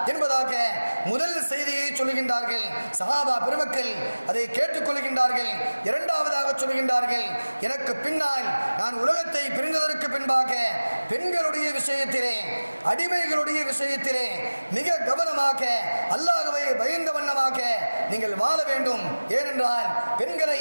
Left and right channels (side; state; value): both; inverted; correlation -1.00